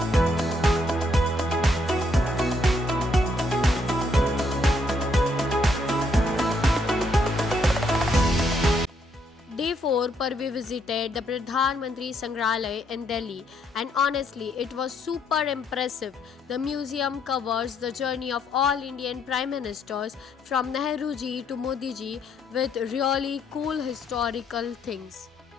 Day 4 पर we visited the Pradhan Mantri Sangrahalaya in Delhi, and honestly it was super impressive. The museum covers the journey of all Indian Prime Ministers from Nehru ji to Modi ji with really cool historical things.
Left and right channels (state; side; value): normal; both; correlation 0.72